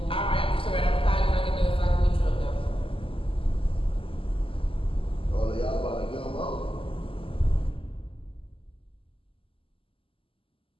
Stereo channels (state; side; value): late; right; 0.26 ms